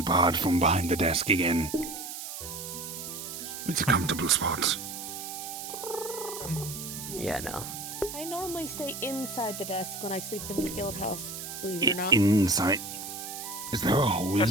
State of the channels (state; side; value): noise; right; hiss, 8 dB below the sound